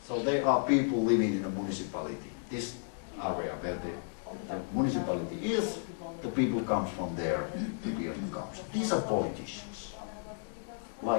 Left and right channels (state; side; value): silent; right; digital silence